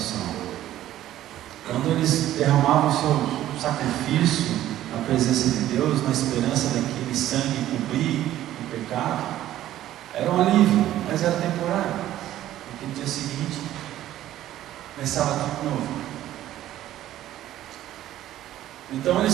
Quando eles derramavam o seu sacrifício na presença de Deus, na esperança daquele sangue cobrir o pecado, era um alívio, mas era temporário, porque no dia seguinte começava tudo novo. Então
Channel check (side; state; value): left; quieter; 13.2 dB